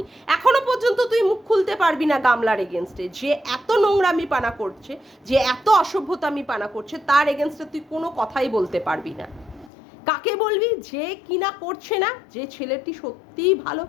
এখনো পর্যন্ত তুই মুখ খুলতে পারবি না গামলার এগেনস্টে, যে এত নোংরামি পানা করছে, যে এত অসভ্যতামি পানা করছে, তার এগেনস্টে তুই কোনো কথাই বলতে পারবি না। কাকে বলবি, যে কিনা করছে না, যে ছেলেটি সত্যিই ভালো,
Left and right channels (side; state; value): right; drops out; at 9.7 s